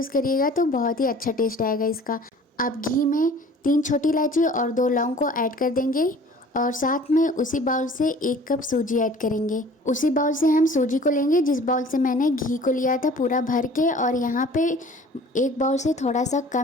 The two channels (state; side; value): normal; both; correlation 0.48